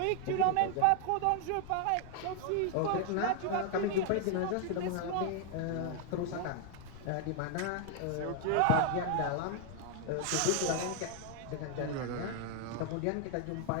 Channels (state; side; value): different; both; correlation 0.00